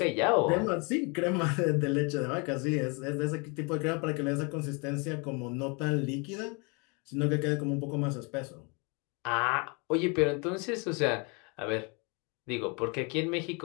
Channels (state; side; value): quieter; right; 32.0 dB